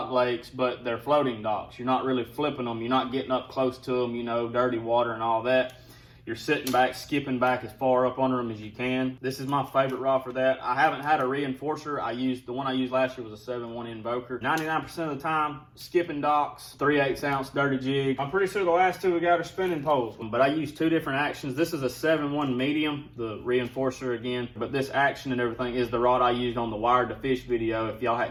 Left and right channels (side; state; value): both; identical; correlation 1.00